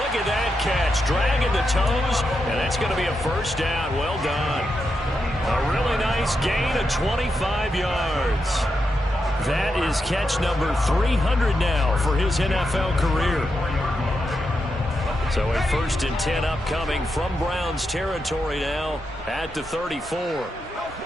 look at that catch. Dragging the toes, and that's going to be a first down. Well done. A really nice gain of 25 yards. That is catch number 300 now for his NFL career. So a 1st and 10 upcoming from Browns territory now at the 34.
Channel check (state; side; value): normal; both; correlation 0.85